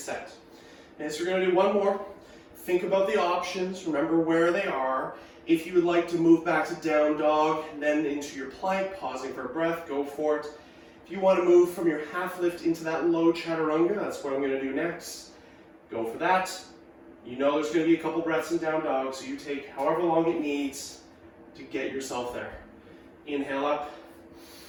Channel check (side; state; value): both; identical; correlation 1.00